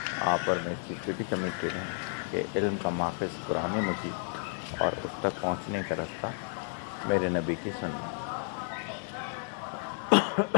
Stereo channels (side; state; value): right; silent; 55 dB below the other